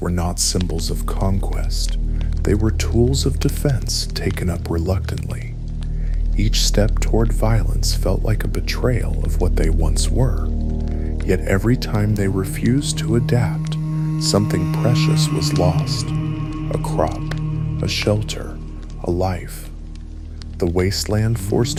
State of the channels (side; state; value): both; identical; correlation 1.00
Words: not symbols of conquest. They were tools of defense taken up reluctantly. Each step toward violence felt like a betrayal of what they once were. Yet every time they refused to adapt, something precious was lost. A crop, a shelter, a life. The wasteland